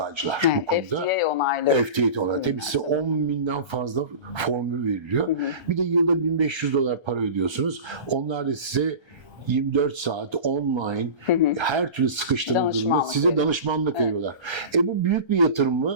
bu konuda. FDA onaylı. FDA onaylı. Tabii size 10.000'den fazla formül veriliyor. Bir de yılda 1.500 dolar para ödüyorsunuz. Onlar da size 24 saat online her türlü sıkıştığınız durumda Danışmanlık size veriyor. danışmanlık veriyorlar. Bu büyük bir yatırım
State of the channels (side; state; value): left; late; 1.3 ms